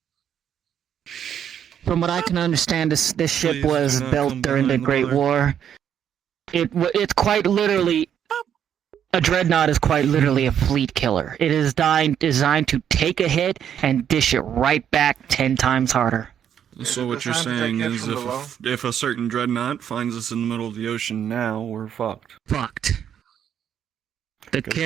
From what I can understand, this ship was built during the Great War. It's quite literally... A dreadnought is quite literally a fleet killer. It is designed to take a hit and dish it right back 10 times harder. So what you're saying is if a certain dreadnought finds us in the middle of the ocean now, we're fucked. Fucked. The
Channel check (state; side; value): quieter; left; 9.1 dB